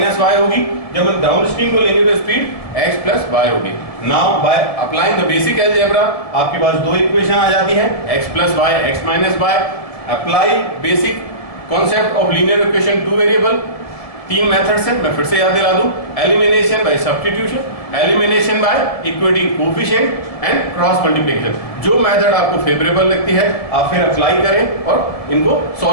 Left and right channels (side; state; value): right; late; 1.7 ms